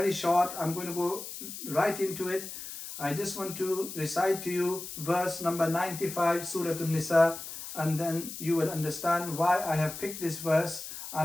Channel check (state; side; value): noise; left; hiss, 10 dB below the sound